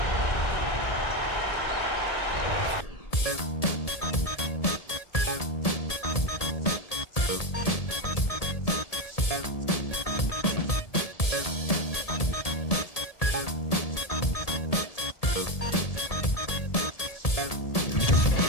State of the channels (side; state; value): right; late; 1.7 ms